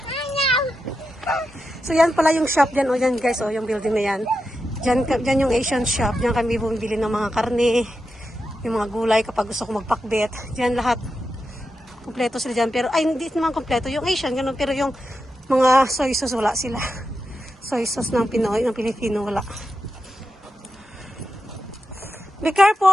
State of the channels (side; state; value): both; normal; correlation 0.88